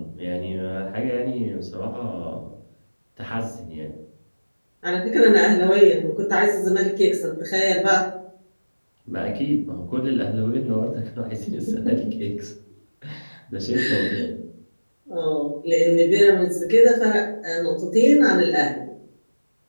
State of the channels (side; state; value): both; inverted; correlation -1.00